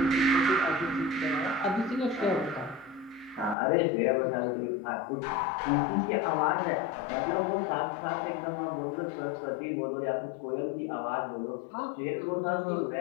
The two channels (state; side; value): drops out; right; at 3.6 s